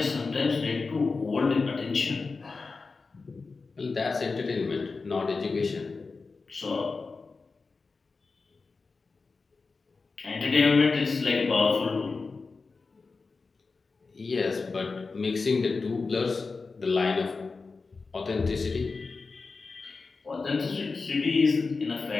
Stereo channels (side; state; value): right; quieter; 4.2 dB